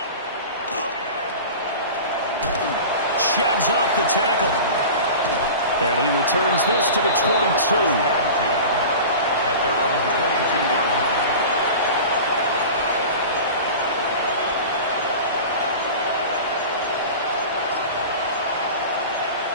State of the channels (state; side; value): inverted; both; correlation -0.34